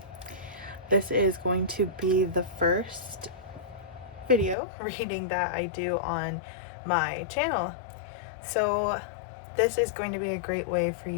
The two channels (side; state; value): right; drops out; at 4.5 s